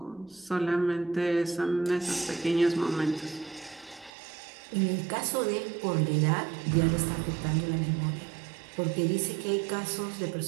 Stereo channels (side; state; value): left; drops out; at 4.1 s